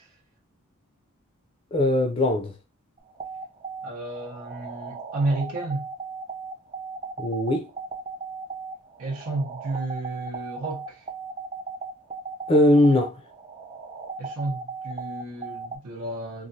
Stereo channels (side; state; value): both; normal; correlation 0.59